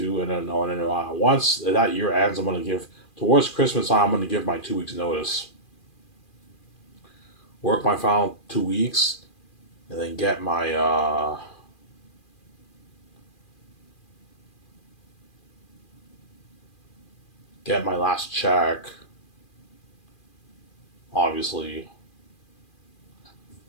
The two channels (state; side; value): late; right; 2.4 ms